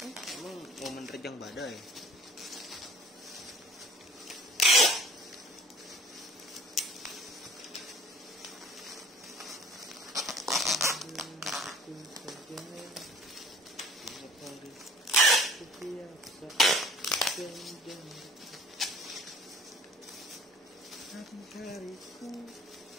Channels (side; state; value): both; normal; correlation 0.50